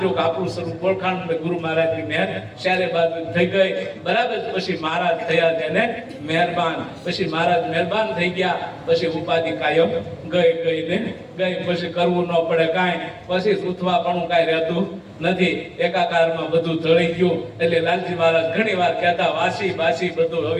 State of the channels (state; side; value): identical; both; correlation 1.00